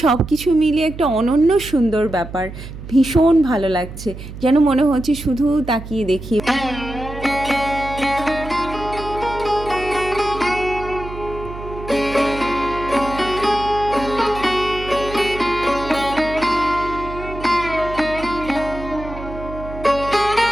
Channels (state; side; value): noise; right; hum, 12 dB below the sound